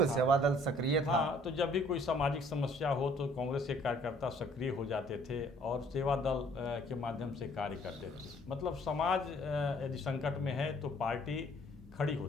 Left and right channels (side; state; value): both; normal; correlation 0.59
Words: सेवा दल सक्रिय था। हाँ, तो जब भी कोई सामाजिक समस्या हो तो कांग्रेस के कार्यकर्ता सक्रिय हो जाते थे और सेवा दल के माध्यम से कार्य करते थे। मतलब समाज यदि संकट में है तो पार्टी खड़ी